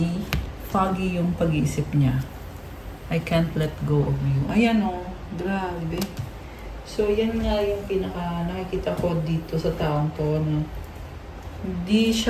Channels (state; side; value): identical; both; correlation 1.00